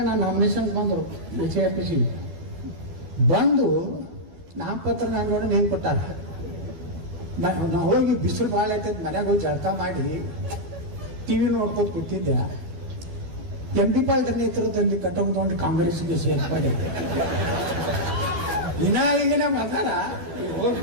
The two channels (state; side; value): late; left; 12 ms